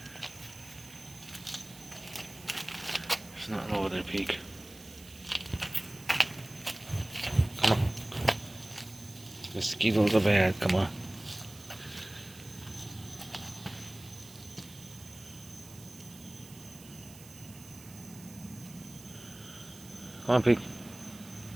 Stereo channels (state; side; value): noise; right; hiss, 18 dB below the sound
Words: There's nothing over there, Pete. Come on. Mosquitoes are bad. Come on. Come on, Pete.